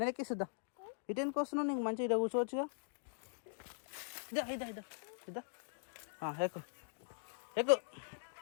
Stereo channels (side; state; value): right; silent; digital silence